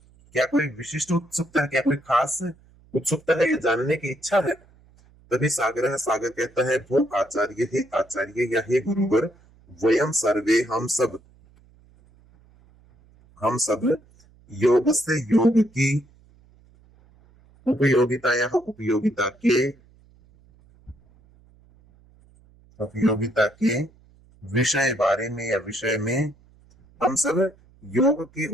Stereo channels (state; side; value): noise; right; hum, 29 dB below the sound